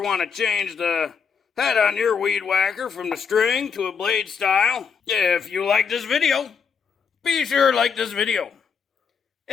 want to change the head on your weed whacker from the string to a blade style. If you like this video, be sure to like this video.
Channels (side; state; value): right; quieter; 6.3 dB